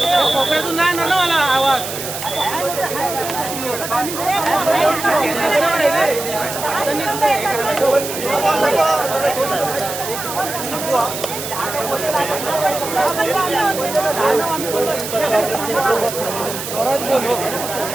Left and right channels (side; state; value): right; noise; hiss, 7 dB below the sound